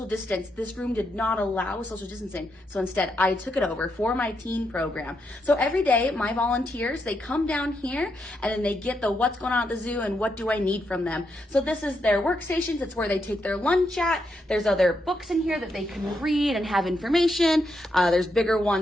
distance. This room did not allow social distancing. So instead, I took it over for my teen program. So every day, my volunteers, they come down here and then they get the what's going on at the zoo and what do I need from them. So this is their workstations. It's where they take their lunch at. There's other books in here that they can read and have information. There's bigger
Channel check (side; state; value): both; normal; correlation 0.81